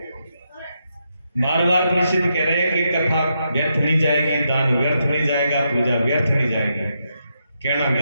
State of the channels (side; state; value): both; inverted; correlation -0.82